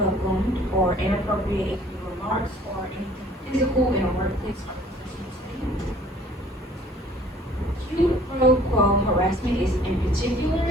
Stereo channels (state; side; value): normal; both; correlation 0.54